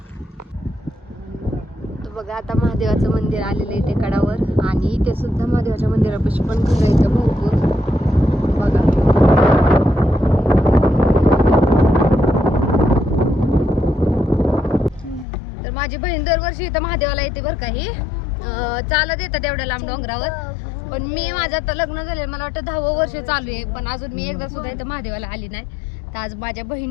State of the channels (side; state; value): right; drops out; at 15.2 s